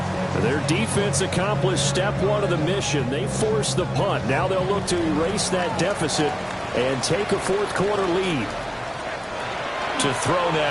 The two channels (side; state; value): both; identical; correlation 1.00